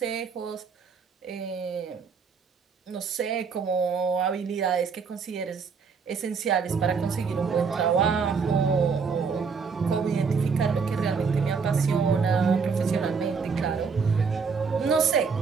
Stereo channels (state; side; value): quieter; left; 5.5 dB